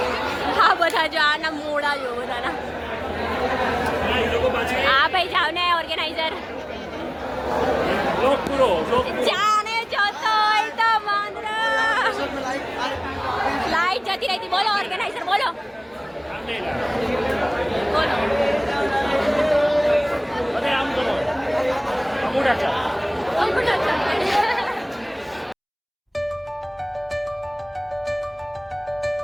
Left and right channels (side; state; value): both; identical; correlation 1.00